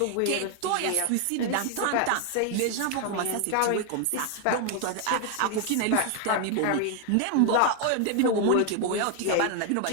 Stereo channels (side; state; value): both; different; correlation 0.00